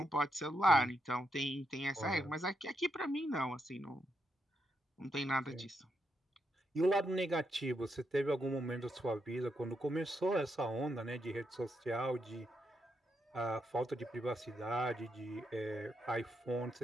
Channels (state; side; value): normal; both; correlation 0.81